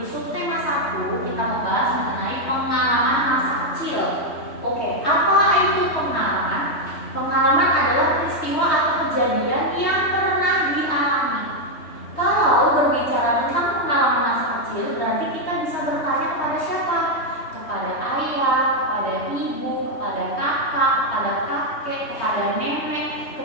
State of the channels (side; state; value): right; late; 3.2 ms